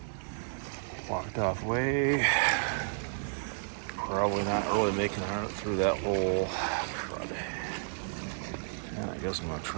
blocked off way. Probably not really making it through that whole crud. And I guess I'm going to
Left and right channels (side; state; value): left; silent; digital silence